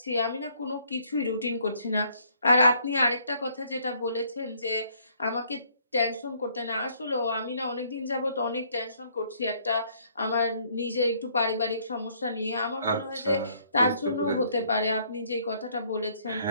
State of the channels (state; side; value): inverted; both; correlation -0.65